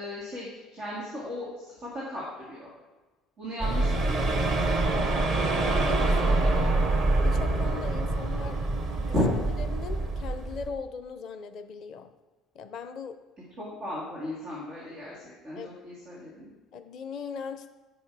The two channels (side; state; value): both; normal; correlation 0.74